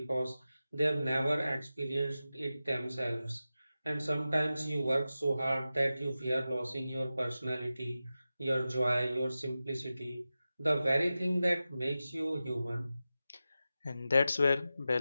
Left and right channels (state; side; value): inverted; both; correlation -0.93